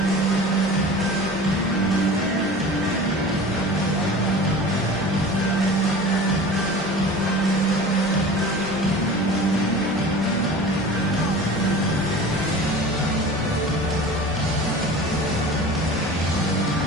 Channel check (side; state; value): both; normal; correlation 0.38